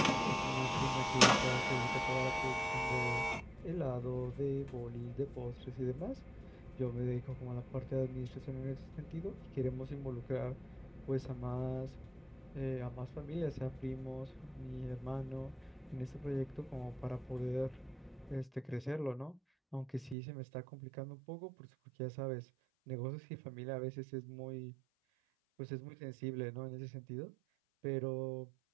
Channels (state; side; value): drops out; left; at 20.2 s